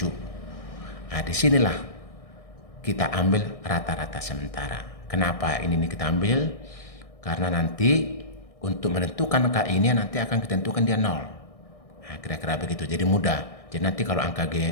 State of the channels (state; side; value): late; right; 1.6 ms